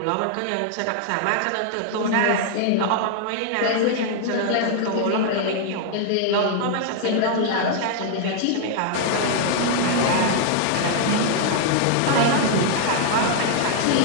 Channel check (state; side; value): different; both; correlation 0.00